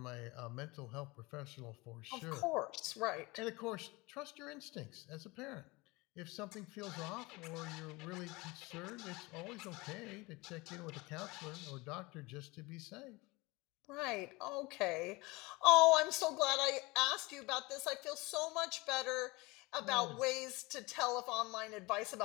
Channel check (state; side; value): quieter; right; 23.6 dB